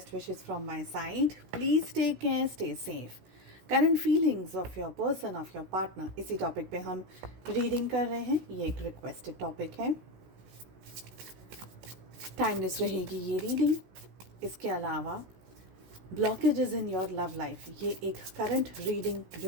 wishes from my side. Please take care, stay safe. Current feelings of your person, of your partner, इसी टॉपिक पे हम रीडिंग कर रहे हैं। ये एक रिक्वेस्टेड टॉपिक है, टाइमलेस रहेगी ये रीडिंग। इसके अलावा blockages in your love life, ये एक करंट रीडिंग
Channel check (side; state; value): left; late; 17 ms